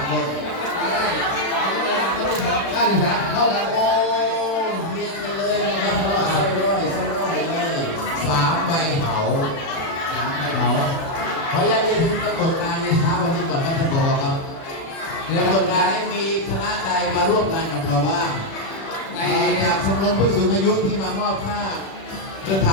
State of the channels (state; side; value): late; right; 36 ms